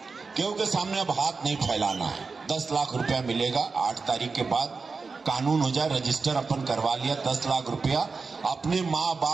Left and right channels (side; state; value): left; quieter; 4.5 dB